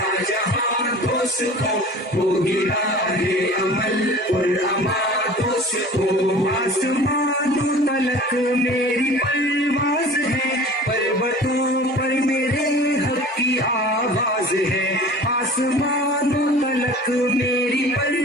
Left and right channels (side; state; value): both; normal; correlation 0.42